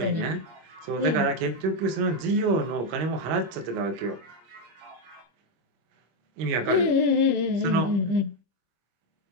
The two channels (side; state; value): left; late; 25 ms